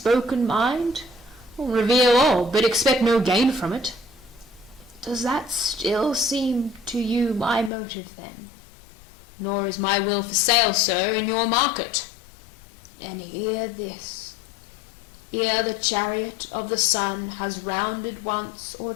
mind? Reveal all, but expect no gain from it. Does that still seem to you my motive, then? Nor is my will for sale, sir, in your market. And hear this. Ere the chariot of the sun has rounded once or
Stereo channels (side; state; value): right; drops out; at 7.7 s